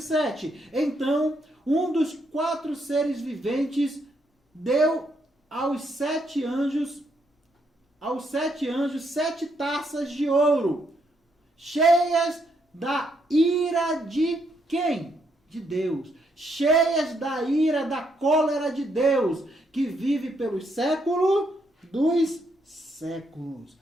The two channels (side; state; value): both; normal; correlation 0.76